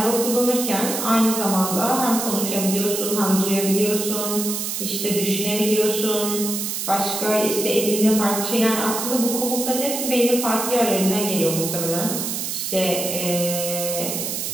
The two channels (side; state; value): right; noise; hiss, 3 dB below the sound